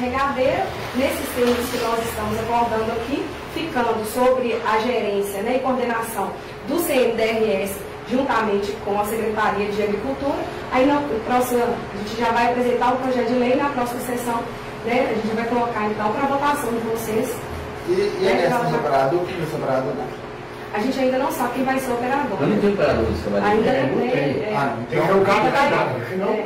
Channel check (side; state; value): both; identical; correlation 1.00